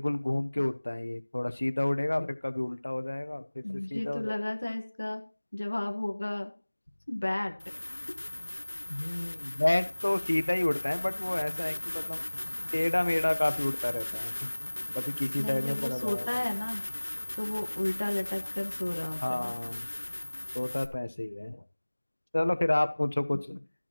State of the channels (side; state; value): both; inverted; correlation -1.00